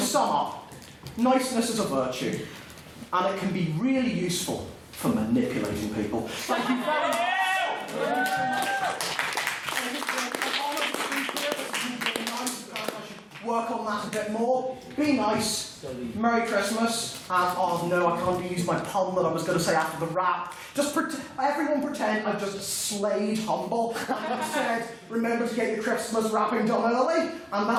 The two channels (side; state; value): both; identical; correlation 1.00